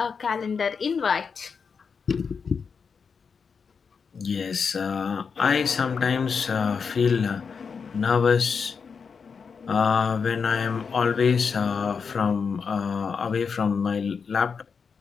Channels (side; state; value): right; quieter; 5.8 dB